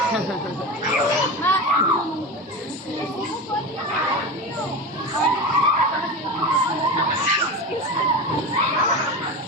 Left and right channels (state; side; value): normal; both; correlation 0.25